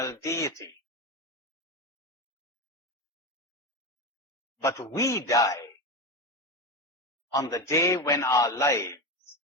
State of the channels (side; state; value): both; normal; correlation 0.18